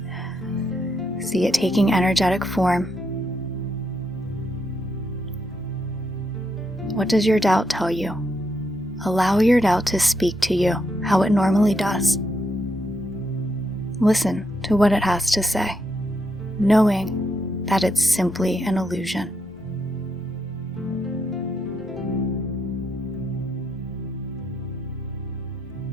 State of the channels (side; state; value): both; normal; correlation 0.79